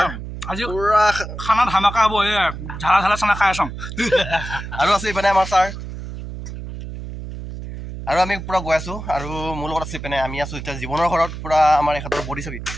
আজি পুৰা খানা ধামাকা হ'ব এ ঝালা ঝালা খানা খাই আছম আৰু আছে মানে আমাৰ স্যাৰ আৰু আমি পুৰা গৈ আছো আৰু মোৰ লগত আছে মানে আমি আছো এতিয়া জীৱনৰ ঘৰত পুৰা আমাৰ এখতৰ বডি ছবি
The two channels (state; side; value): noise; right; hum, 9 dB below the sound